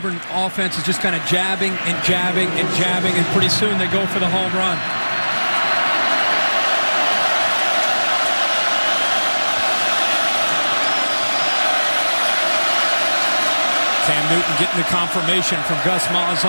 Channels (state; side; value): inverted; both; correlation -1.00